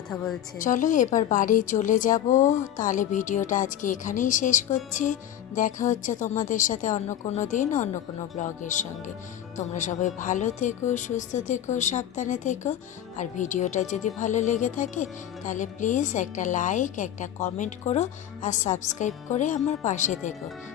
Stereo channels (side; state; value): right; quieter; 11.1 dB